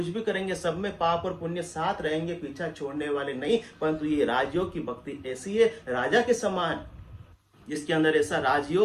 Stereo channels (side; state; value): both; identical; correlation 1.00